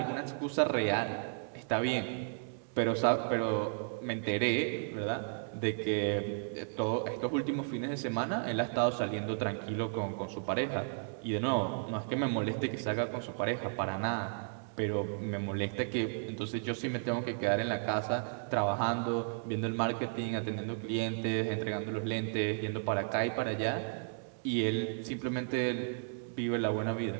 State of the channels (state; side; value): silent; left; digital silence